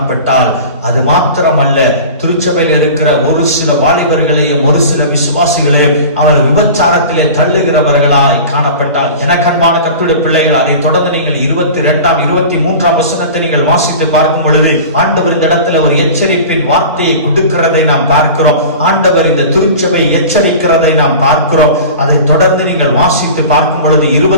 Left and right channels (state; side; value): inverted; both; correlation -0.37